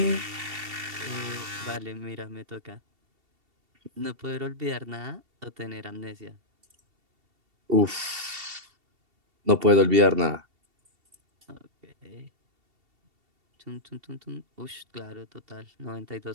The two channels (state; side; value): late; left; 2.7 ms